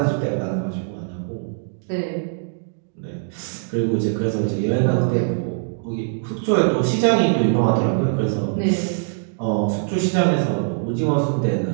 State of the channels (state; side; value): silent; left; digital silence